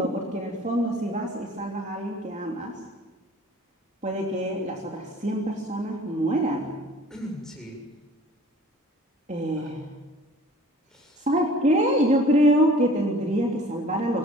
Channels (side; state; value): both; normal; correlation 0.49